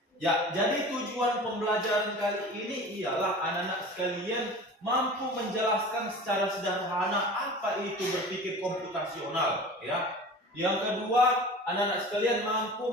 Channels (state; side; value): normal; both; correlation 0.38